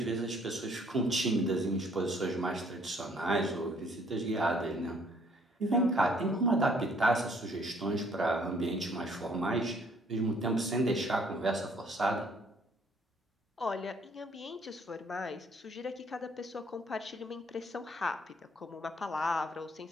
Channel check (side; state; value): both; normal; correlation 0.62